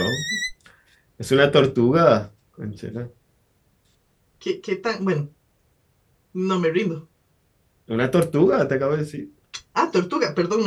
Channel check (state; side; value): identical; both; correlation 1.00